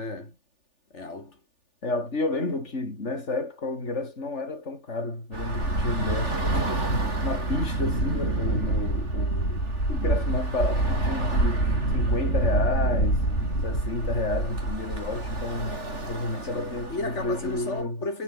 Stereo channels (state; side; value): late; right; 3.4 ms